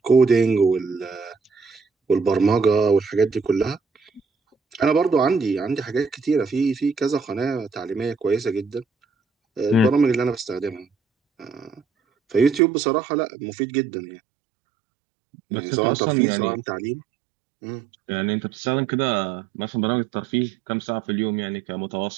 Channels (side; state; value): left; drops out; at 12.6 s